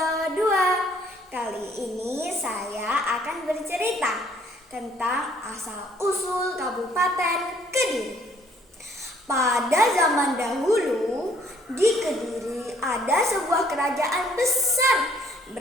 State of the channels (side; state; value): both; normal; correlation 0.62